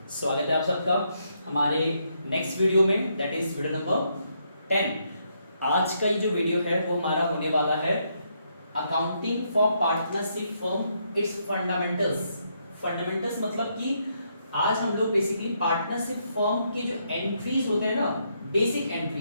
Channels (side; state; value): both; inverted; correlation -0.76